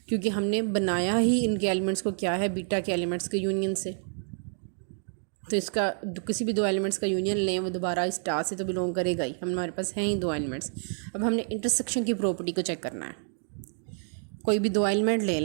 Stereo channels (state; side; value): silent; left; 59 dB below the other